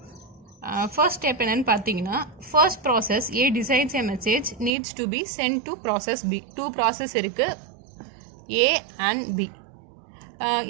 First step என்னன்னு பார்த்தீங்கன்னா first process A decides a message needs to be sent to process B. 2 process இருக்குது, A and B.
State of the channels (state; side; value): drops out; left; at 4.7 s